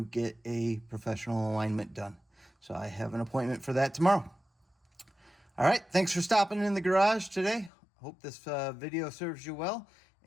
get a professional alignment done. So I have an appointment for that tomorrow. All right, thanks for stopping in the garage today. Hope this video serves you well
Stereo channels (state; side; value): drops out; right; at 7.7 s